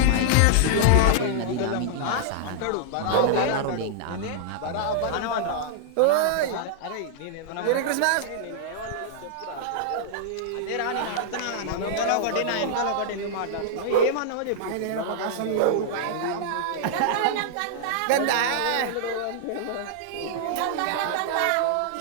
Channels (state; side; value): different; both; correlation -0.01